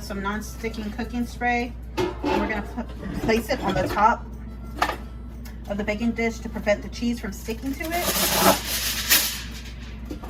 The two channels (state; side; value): identical; both; correlation 1.00